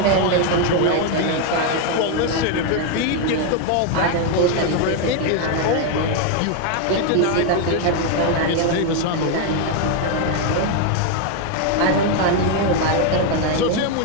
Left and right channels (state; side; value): different; both; correlation 0.01